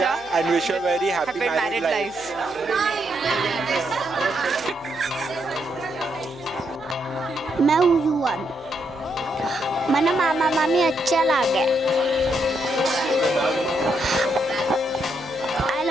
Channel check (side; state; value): left; noise; hum, 25 dB below the sound